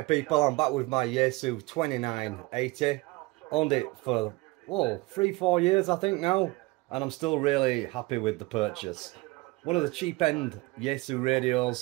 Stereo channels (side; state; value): left; quieter; 22.9 dB